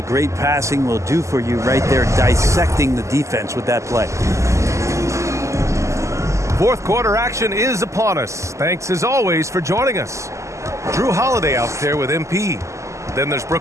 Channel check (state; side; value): late; left; 0.14 ms